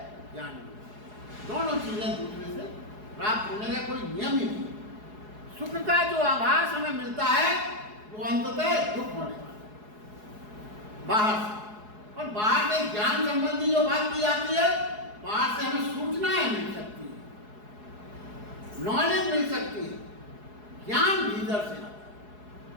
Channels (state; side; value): late; left; 4.8 ms